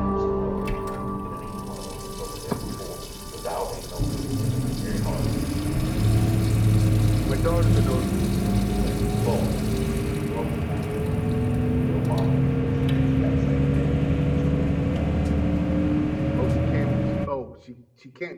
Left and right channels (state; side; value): identical; both; correlation 1.00